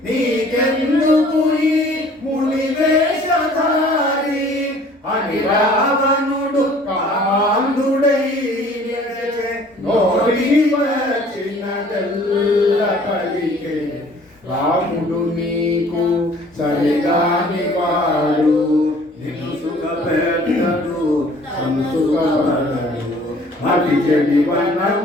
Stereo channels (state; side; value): normal; both; correlation 0.53